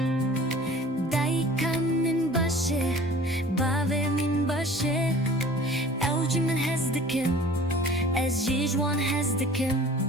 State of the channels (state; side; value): normal; both; correlation 0.46